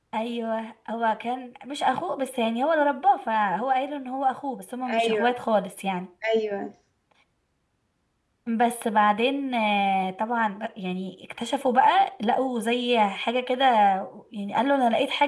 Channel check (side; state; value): both; identical; correlation 1.00